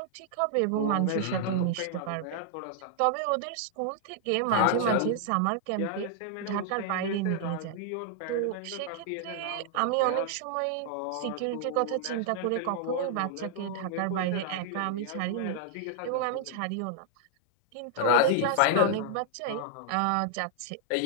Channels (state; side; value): different; both; correlation -0.01